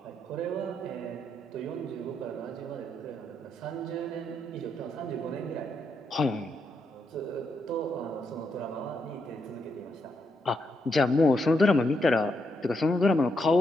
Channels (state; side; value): normal; both; correlation 0.80